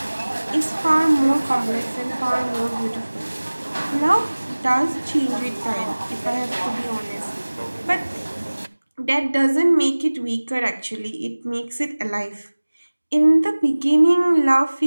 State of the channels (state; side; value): inverted; both; correlation -1.00